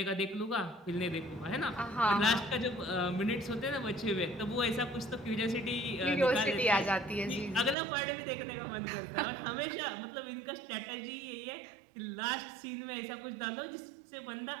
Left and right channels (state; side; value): drops out; left; at 7.8 s